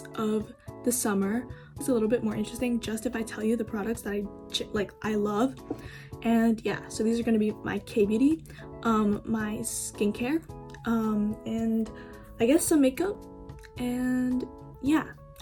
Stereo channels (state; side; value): identical; both; correlation 1.00